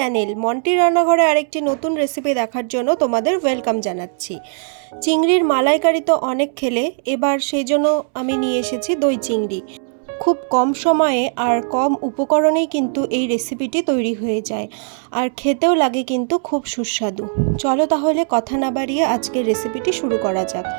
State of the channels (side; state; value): left; silent; 67 dB below the other